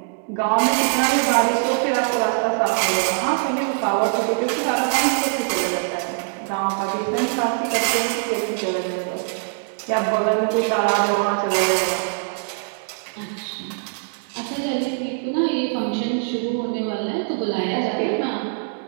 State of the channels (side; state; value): left; silent; 64 dB below the other